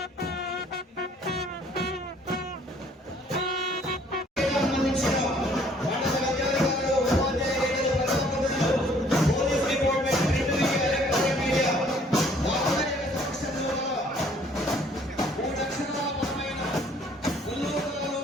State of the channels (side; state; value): both; normal; correlation 0.59